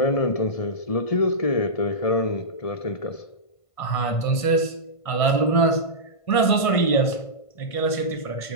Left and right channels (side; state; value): right; late; 1.5 ms